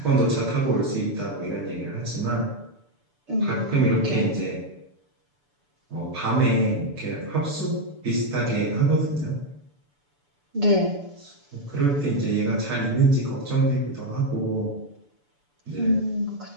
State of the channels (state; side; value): late; left; 6.9 ms